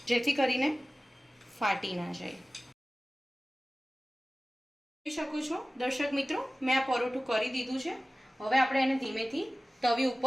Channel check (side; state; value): both; normal; correlation 0.97